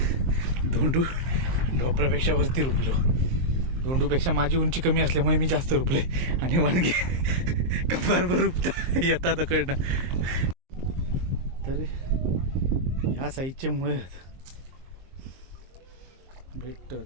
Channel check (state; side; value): late; left; 23 ms